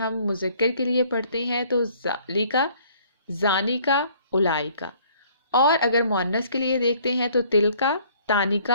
مذکر کے لیے پڑھتے ہیں تو ذالکا، زانیکا، اولائکا، اور اگر مؤنث کے لیے دیکھتے ہیں تو تلکا،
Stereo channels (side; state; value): both; inverted; correlation -0.59